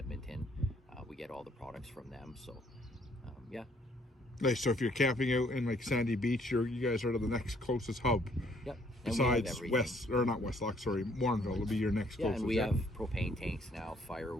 We get all the products from them. So yeah. Nice. So if you're camping out in like Sandy Beach, you guys are the next closest hub. Yep. Besides Warrenville will be your next closest. And we have propane tanks now,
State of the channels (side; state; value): both; normal; correlation 0.64